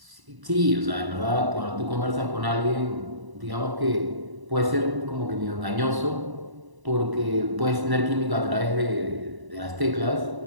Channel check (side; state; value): left; late; 1.0 ms